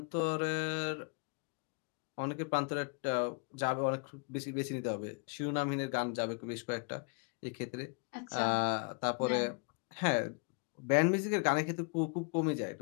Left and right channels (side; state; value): right; quieter; 35.4 dB